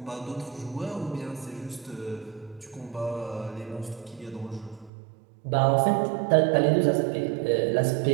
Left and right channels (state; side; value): drops out; left; at 4.9 s